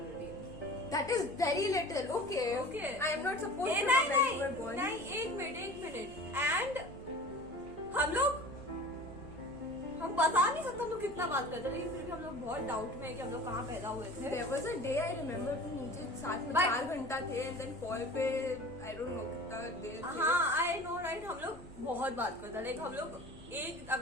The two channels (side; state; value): right; noise; hum, 18 dB below the sound